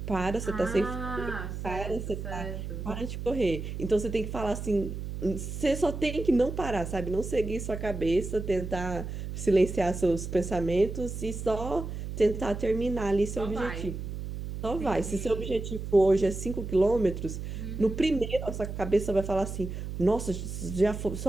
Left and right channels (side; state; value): right; noise; hum, 6 dB below the sound